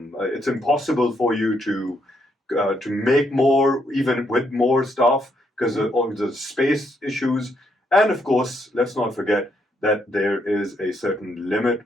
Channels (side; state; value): both; normal; correlation 0.75